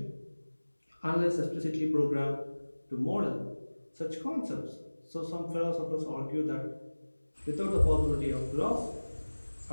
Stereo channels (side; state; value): both; inverted; correlation -1.00